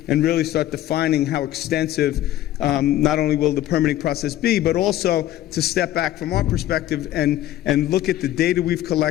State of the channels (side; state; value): right; quieter; 13.6 dB